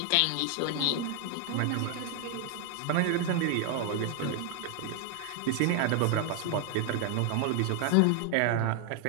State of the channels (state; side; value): different; both; correlation 0.00